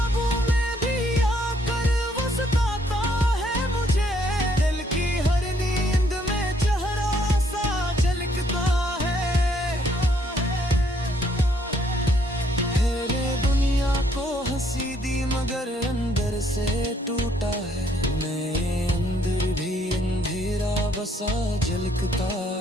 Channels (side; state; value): both; normal; correlation 0.68